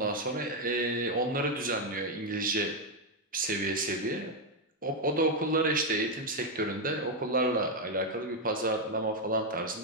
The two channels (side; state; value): both; normal; correlation 0.03